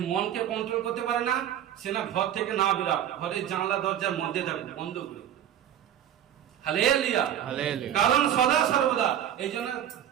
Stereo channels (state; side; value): quieter; left; 10.5 dB